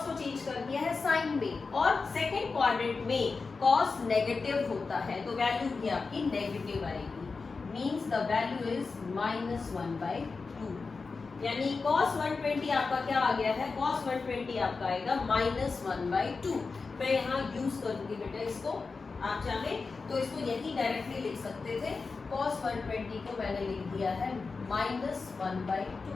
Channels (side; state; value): right; quieter; 4.4 dB